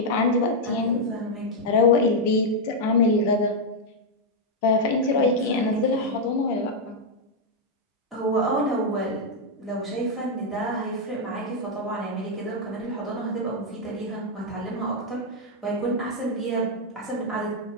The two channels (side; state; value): both; normal; correlation -0.02